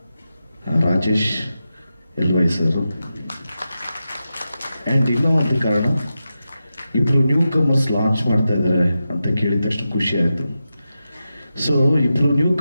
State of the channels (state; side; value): inverted; both; correlation -0.91